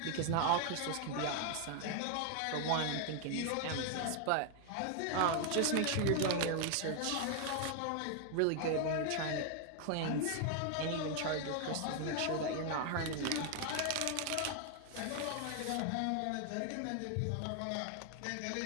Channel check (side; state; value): both; different; correlation 0.00